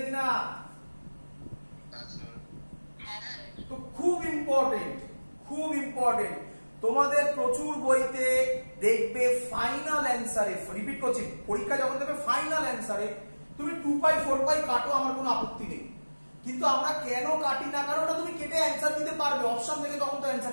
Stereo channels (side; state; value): both; inverted; correlation -1.00